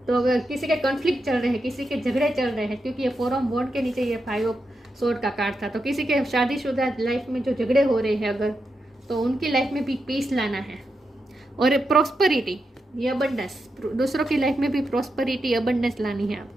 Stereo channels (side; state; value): both; normal; correlation 0.86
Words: तो अगर किसी के कॉन्फ्लिक्ट चल रहे हैं, किसी के झगड़े चल रहे हैं, क्योंकि ये 4 ऑफ वॉन्ड के नीचे ये 5 ऑफ सोर्ड का कार्ड था, तो किसी के शादीशुदा लाइफ में जो झगड़े हो रहे हैं अगर, तो उनकी लाइफ में भी पीस लाना है। और प्रॉस्पेरिटी, ये अबंडेंस, दूसरों की लाइफ में भी प्रॉस्पेरिटी अबंडेंस लानी है